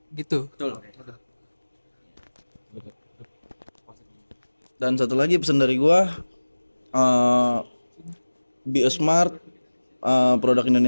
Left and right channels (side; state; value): both; inverted; correlation -1.00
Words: gitu. Dan satu lagi pesan dari gua, be a smart, produk